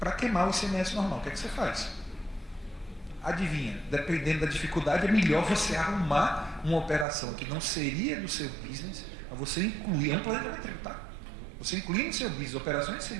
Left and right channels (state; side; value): drops out; left; at 7.1 s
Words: queimar o ICMS normal. O que é que você faz? Adivinha, dependendo da dificuldade, é melhor você arrumar uma operação que não seria do seu business, mas você incluir, é um planejamento tributário. Você incluir no seu business operações de